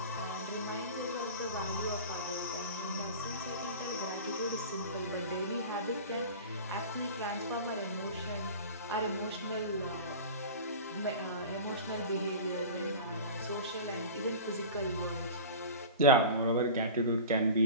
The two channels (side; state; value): both; inverted; correlation -0.34